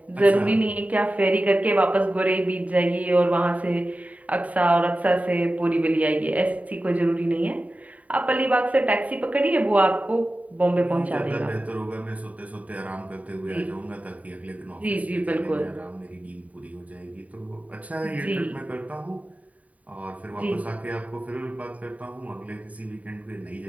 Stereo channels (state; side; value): late; left; 0.069 ms